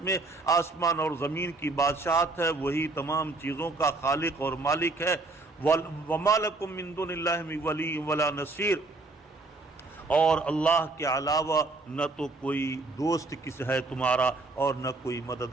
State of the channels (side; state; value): left; quieter; 3.3 dB